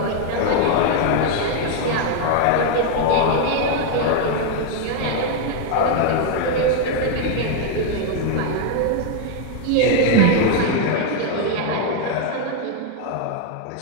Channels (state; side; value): different; both; correlation 0.01